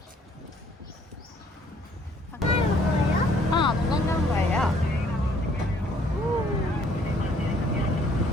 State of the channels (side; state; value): both; normal; correlation 0.62